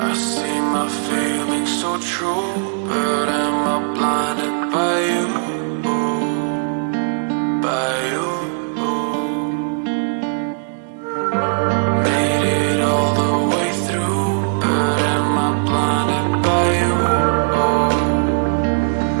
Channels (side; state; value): left; silent; digital silence